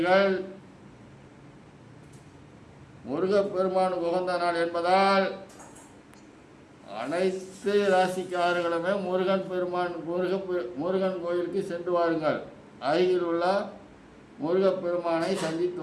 முருகப்பெருமானுக்கு உகந்த நாள் என்பதால் அனைத்து ராசிக்காரர்களுமே முருகன் கோயிலுக்கு சென்று வாருங்கள். அருகில் உள்ள முருகப்பெருமானை சந்தித்து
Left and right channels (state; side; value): identical; both; correlation 1.00